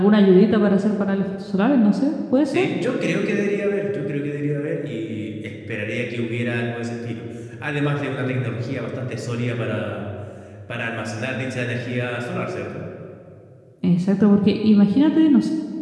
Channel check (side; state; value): both; identical; correlation 1.00